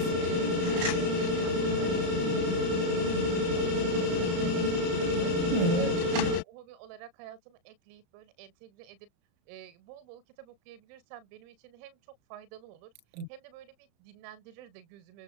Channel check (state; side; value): late; left; 34 ms